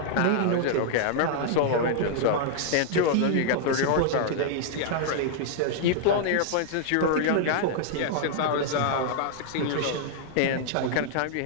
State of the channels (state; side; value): different; both; correlation -0.01